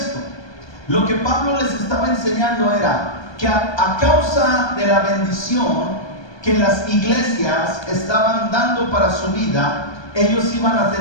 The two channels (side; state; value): right; late; 1.2 ms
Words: Lo que Pablo les estaba enseñando era que a causa de la bendición que las iglesias estaban dando para su vida, ellos iban a